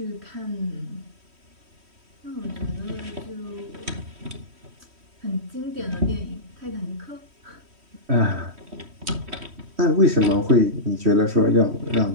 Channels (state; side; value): late; left; 3.1 ms